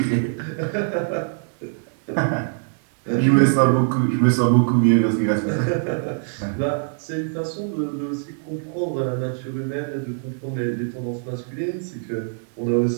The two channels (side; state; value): left; silent; digital silence